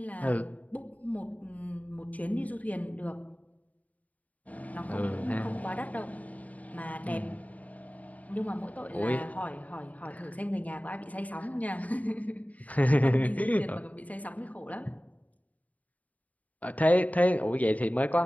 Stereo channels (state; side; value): late; right; 0.072 ms